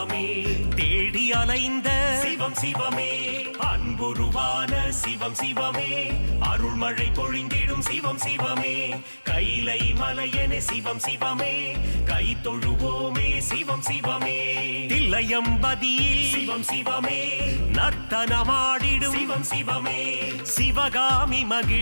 தேடி அலைந்த சிவம் சிவமே அன்புருவான சிவம் சிவமே அருள்மழை பொழிந்திடும் சிவம் சிவமே கைலை மலையனே சிவம் சிவமே கை தொழுவோமே சிவம் சிவமே தில்லையம்பதியில் சிவம் சிவமே நர்த்தனமாடிடும் சிவம் சிவமே சிவகாமி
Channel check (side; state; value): both; inverted; correlation -1.00